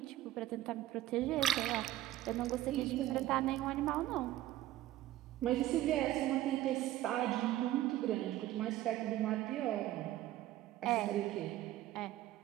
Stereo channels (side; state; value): left; quieter; 14.4 dB